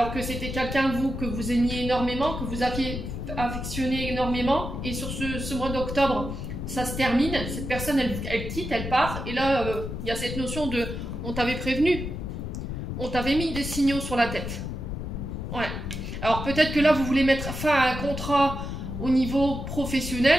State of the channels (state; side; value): noise; left; rumble, 5 dB below the sound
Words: que c'était quelqu'un, vous, que vous aimiez énormément, que vous aviez affectionné énormément, et sur ce mois d'octobre, ça se termine, cette personne, elle quitte, elle part, et là, il y a cette notion de « on t'avait prévenu, on t'avait mis des signaux sur la tête ». Ouais. Alors peut-être que là, vous voulez mettre fin à un contrat au niveau